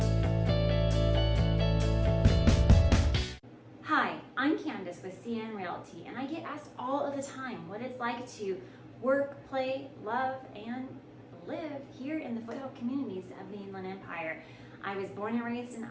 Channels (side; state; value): both; identical; correlation 1.00